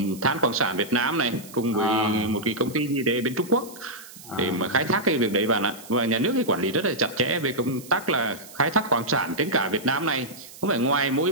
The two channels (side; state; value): right; noise; hiss, 18 dB below the sound